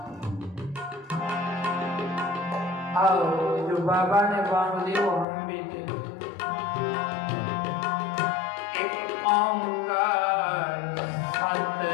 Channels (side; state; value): right; drops out; at 5.2 s